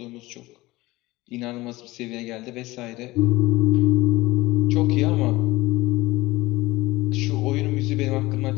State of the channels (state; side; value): quieter; right; 19.8 dB